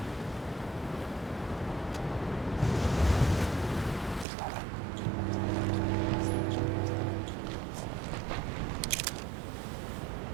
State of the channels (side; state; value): left; drops out; at 4.2 s